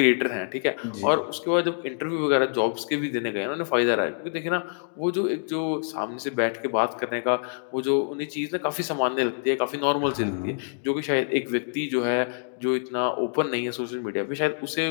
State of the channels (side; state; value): right; silent; digital silence